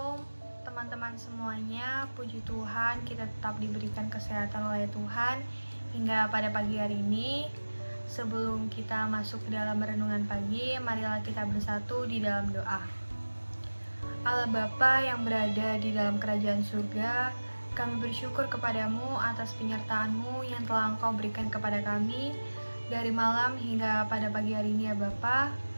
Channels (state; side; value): inverted; both; correlation -1.00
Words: teman-teman semuanya, puji Tuhan kita tetap diberikan kesehatan oleh Tuhan hingga pada pagi hari ini. Sebelum kita masuk ke dalam renungan pagi, marilah kita bersatu di dalam doa. Allah Bapa yang berada di dalam kerajaan surga, kami bersyukur kepadamu atas penyertaan-Mu yang telah Engkau berikan kepada kami dari malam hingga pada pagi hari ini ya Bapa.